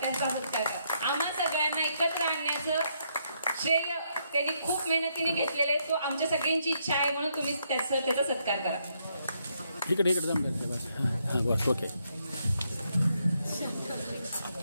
सत्कार करा. आम्हा सगळ्यांना एकत्र आणण्याचं श्रेय त्यांनी खूप मेहनतीने घेतलेलं आहे. तो आमच्या सगळ्यांची इच्छा आहे म्हणून तुम्ही त्याचा सत्कार करा. इकडे बस. ओके.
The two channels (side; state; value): both; inverted; correlation -0.75